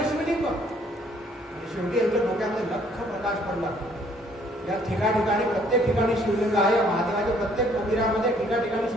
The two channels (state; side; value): normal; both; correlation 0.62